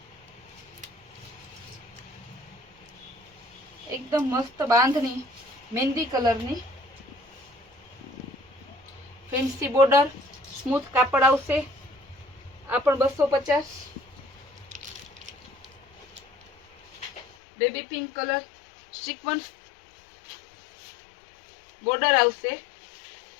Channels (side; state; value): right; drops out; at 17.2 s